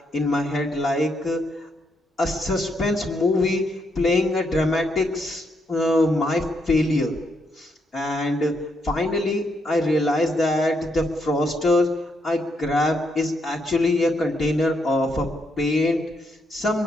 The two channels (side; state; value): both; normal; correlation 0.77